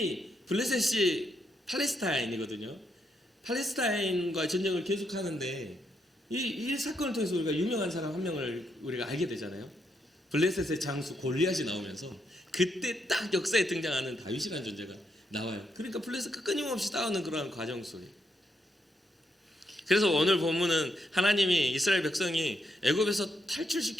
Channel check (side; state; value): both; normal; correlation 0.79